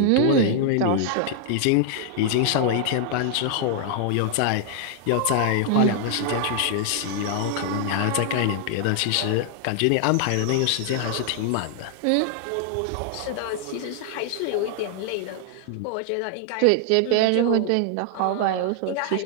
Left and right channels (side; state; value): both; different; correlation 0.00